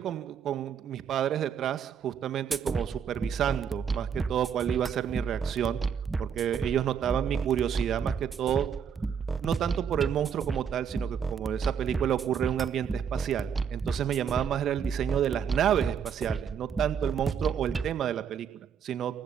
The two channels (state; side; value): quieter; left; 7.6 dB